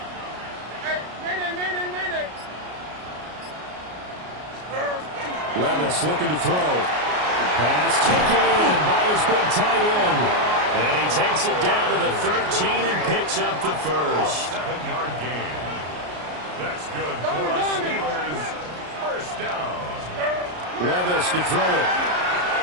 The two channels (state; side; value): late; left; 33 ms